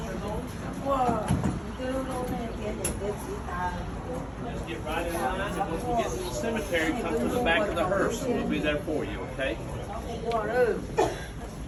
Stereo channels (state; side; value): identical; both; correlation 1.00